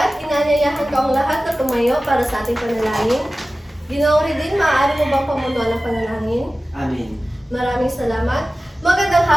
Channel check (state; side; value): normal; both; correlation 0.96